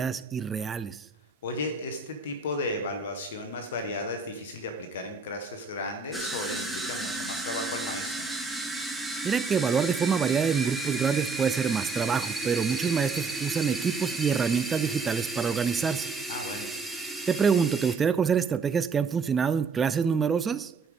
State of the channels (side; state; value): left; quieter; 4.7 dB